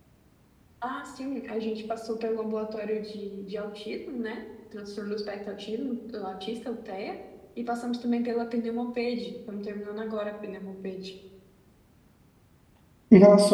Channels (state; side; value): identical; both; correlation 1.00